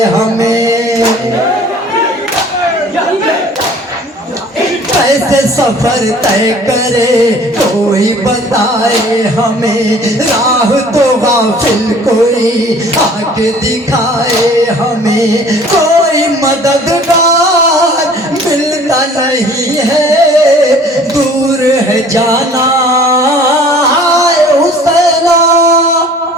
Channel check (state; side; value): normal; both; correlation 0.50